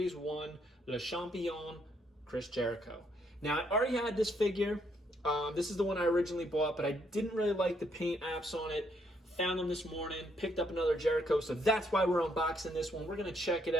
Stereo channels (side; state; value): both; normal; correlation 0.72